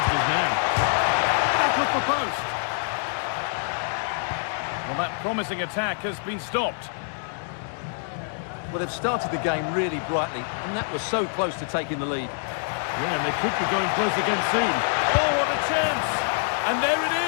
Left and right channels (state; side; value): silent; right; digital silence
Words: his man. Back off the post. Well, that promising attack has been stopped. Well, they've started the game really brightly, and that was so close to taking the lead. Yeah, and they could be going close again soon. Oh, what a chance! And there it